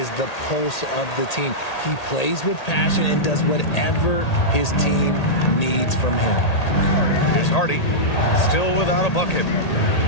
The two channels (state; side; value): late; right; 1.8 ms